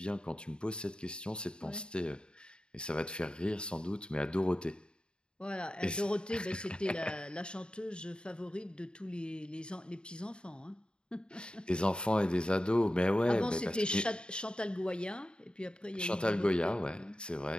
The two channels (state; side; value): late; right; 0.051 ms